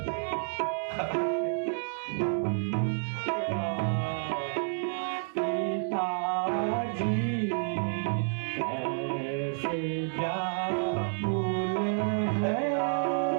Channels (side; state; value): left; silent; 58 dB below the other